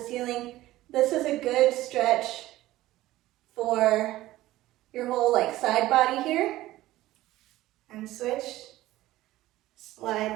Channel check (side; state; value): left; quieter; 16.2 dB